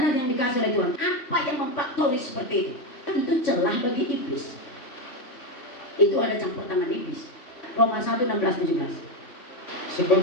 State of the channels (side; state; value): right; late; 3.5 ms